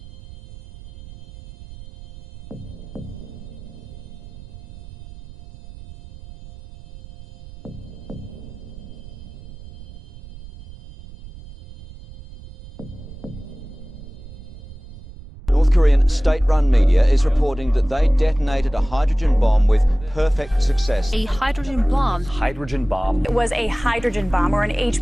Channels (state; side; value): noise; right; rumble, 16 dB below the sound